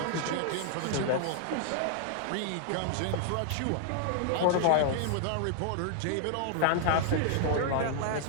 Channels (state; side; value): different; both; correlation -0.01